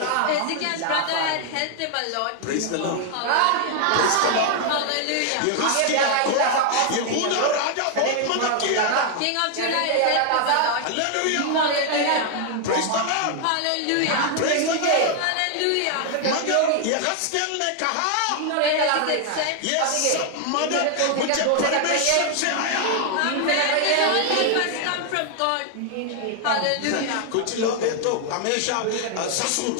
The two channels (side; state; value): both; different; correlation 0.00